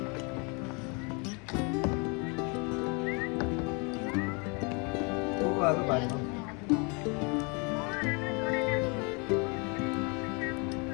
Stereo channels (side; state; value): right; quieter; 32.0 dB